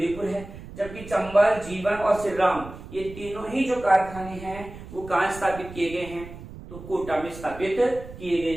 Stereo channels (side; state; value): right; noise; rumble, 14 dB below the sound